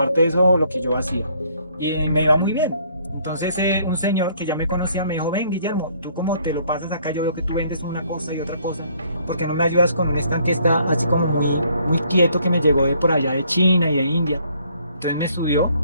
de eso lo que yo hacía. Y me iba muy bien. Entonces un señor que ya me conocía me dijo, ven Guillermo, tú como te lo pasas acá, yo veo que tú vendes una cosa y otra cosa, ¿por qué no me ayudas con un stand que está así como muy quieto, que me llegó de por allá de China y de India? Entonces me subió,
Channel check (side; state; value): both; inverted; correlation -0.64